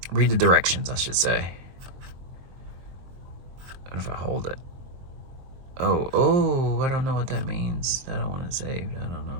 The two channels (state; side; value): late; left; 23 ms